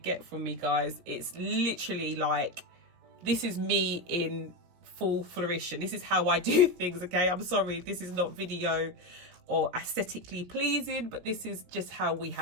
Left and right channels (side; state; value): left; late; 17 ms